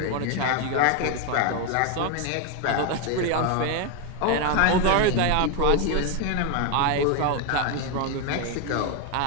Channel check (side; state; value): both; different; correlation 0.01